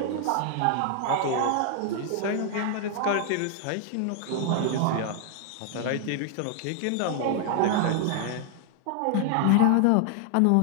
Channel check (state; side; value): different; both; correlation 0.00